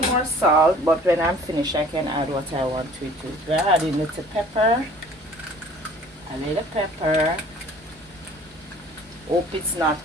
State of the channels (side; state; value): both; normal; correlation 0.50